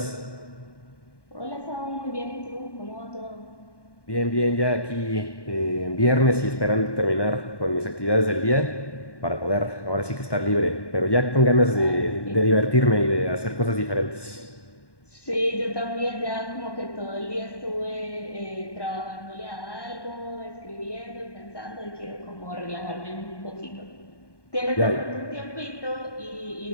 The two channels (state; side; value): late; right; 1.2 ms